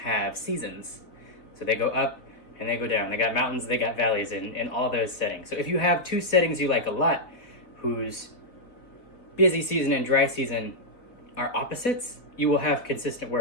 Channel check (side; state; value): right; late; 4.1 ms